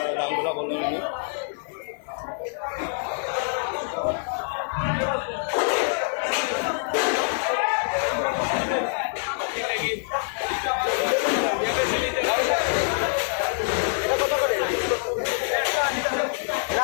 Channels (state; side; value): silent; right; 61 dB below the other